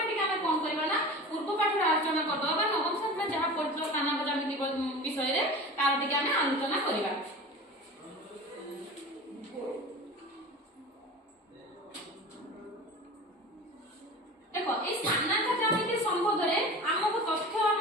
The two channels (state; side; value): normal; both; correlation 0.35